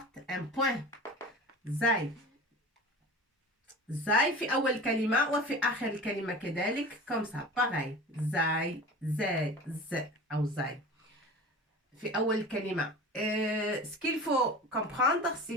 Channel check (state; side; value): normal; both; correlation 0.35